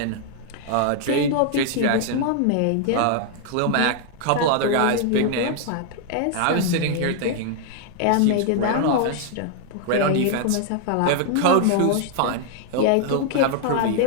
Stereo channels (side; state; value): both; different; correlation 0.00